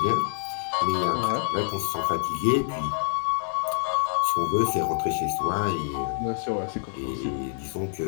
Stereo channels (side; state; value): right; silent; digital silence